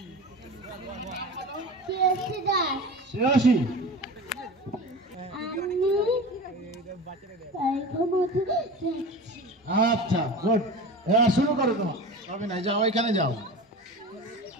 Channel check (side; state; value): both; normal; correlation 0.32